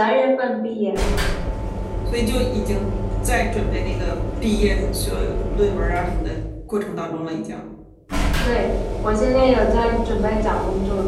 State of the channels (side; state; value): both; identical; correlation 1.00